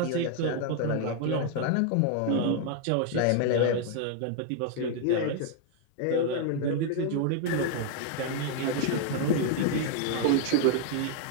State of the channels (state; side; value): different; both; correlation 0.00